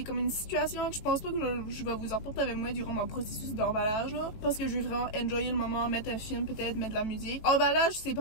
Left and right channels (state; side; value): late; right; 19 ms